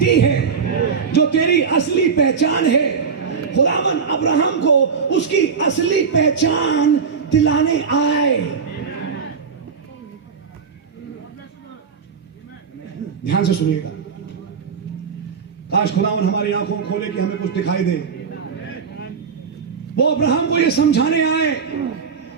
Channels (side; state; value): left; quieter; 5.9 dB